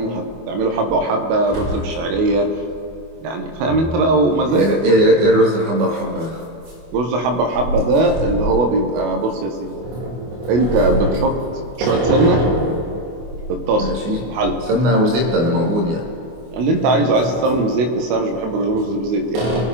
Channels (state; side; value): late; left; 25 ms